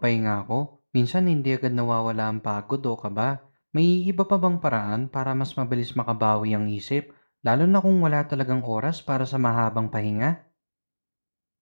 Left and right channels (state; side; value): inverted; both; correlation -1.00